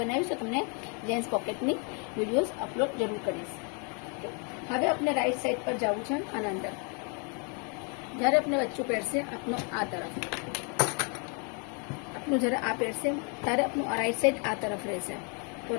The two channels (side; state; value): right; quieter; 36.5 dB